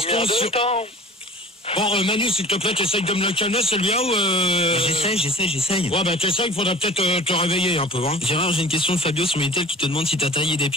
sur... Bon, Manu, s'il te plaît, t'essayes de me le calmer, celui-là, ou... J'essaye. Ouais, ben t'essayes, il faudra peut-être te réveiller un peu, hein. Gérard, j'ai une question de Fabio sur Minitel qui te demande si t'as taillé des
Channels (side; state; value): both; normal; correlation 0.42